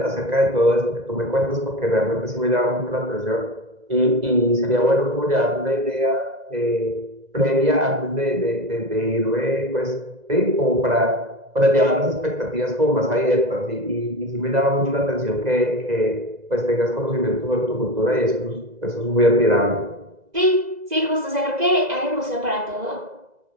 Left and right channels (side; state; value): left; late; 2.0 ms